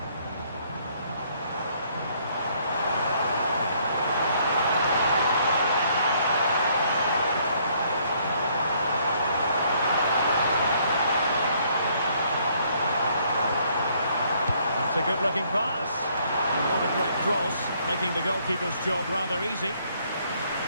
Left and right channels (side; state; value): both; inverted; correlation -0.66